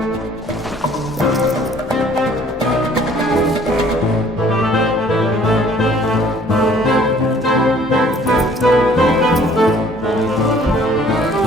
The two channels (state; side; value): normal; both; correlation 0.56